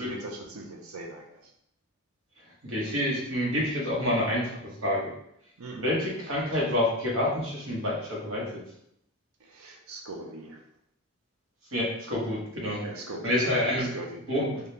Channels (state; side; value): normal; both; correlation 0.19